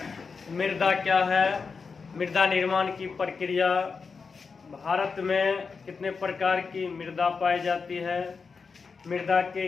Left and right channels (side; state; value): right; quieter; 5.1 dB